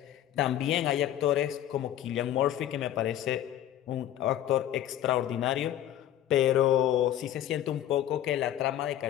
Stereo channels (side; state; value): right; quieter; 11.9 dB